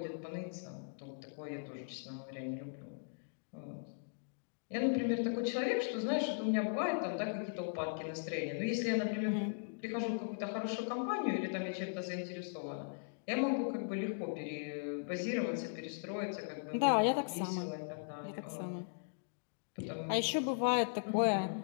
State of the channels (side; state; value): right; silent; digital silence